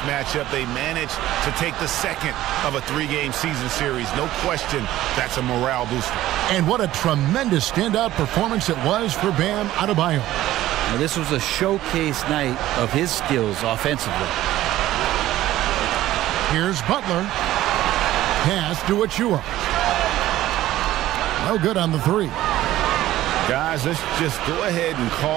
matchup, they managed to take the second of a 3-game season series. No question, that's a morale booster. And what a tremendous standout performance it was for Bam Adebayo. Now, this was a showcase night of his skills offensively. Here's Butler. Pass to Achua. No good on the 3. Guys, let's just go ahead and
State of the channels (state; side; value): quieter; left; 14.7 dB